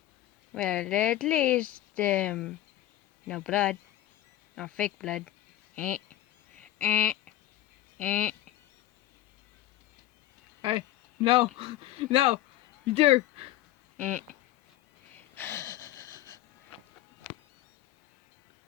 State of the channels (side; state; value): right; quieter; 14.0 dB